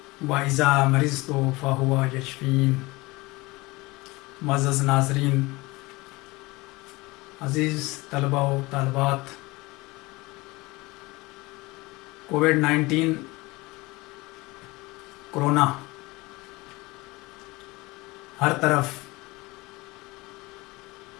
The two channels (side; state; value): right; quieter; 22.4 dB